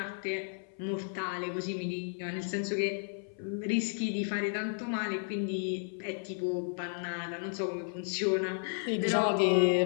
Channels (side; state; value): right; silent; 56 dB below the other